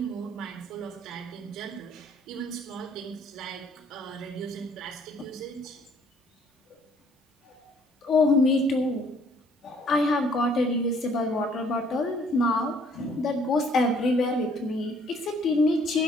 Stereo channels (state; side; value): normal; both; correlation 0.61